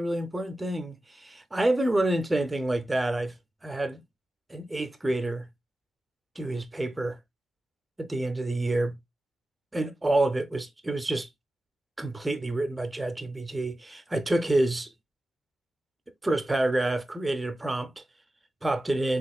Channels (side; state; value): both; normal; correlation 0.94